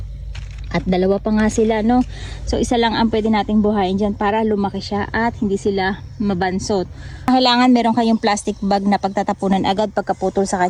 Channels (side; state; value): both; identical; correlation 1.00